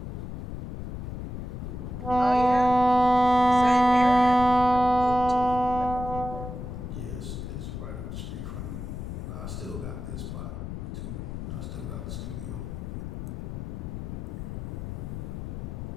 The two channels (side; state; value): left; noise; rumble, 6 dB below the sound